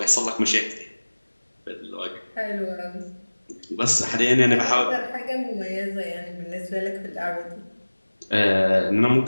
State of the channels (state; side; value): inverted; both; correlation -1.00